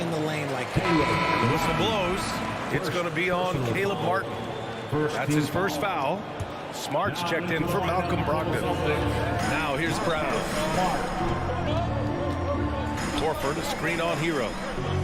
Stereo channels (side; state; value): both; identical; correlation 1.00